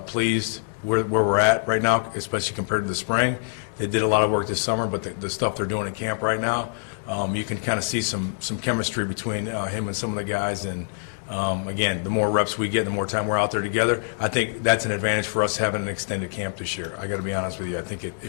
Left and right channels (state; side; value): silent; right; 62 dB below the other